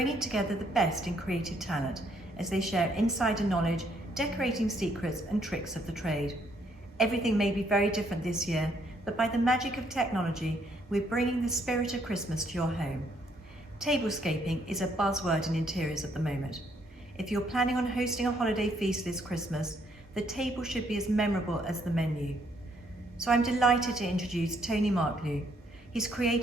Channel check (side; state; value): both; normal; correlation 0.69